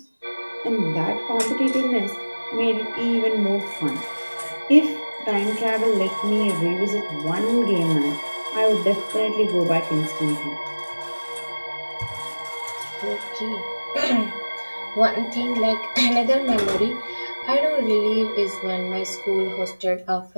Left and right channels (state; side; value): inverted; both; correlation -1.00